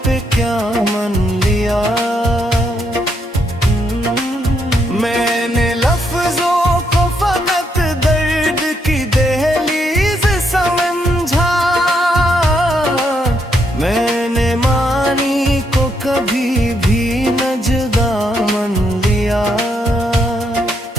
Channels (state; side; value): normal; both; correlation 0.77